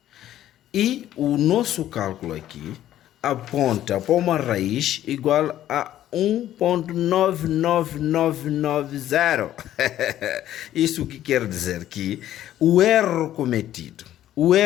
E o nosso cálculo aqui aponta para uma raiz igual a 1,99990. Isso que quer dizer que o erro cometido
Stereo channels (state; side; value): quieter; right; 12.5 dB